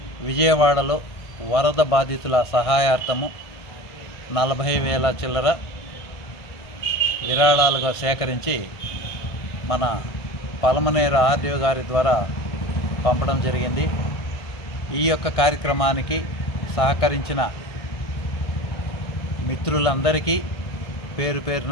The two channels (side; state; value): right; late; 1.7 ms